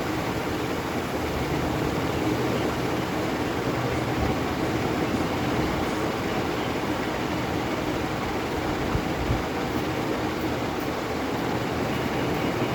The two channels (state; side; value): identical; both; correlation 1.00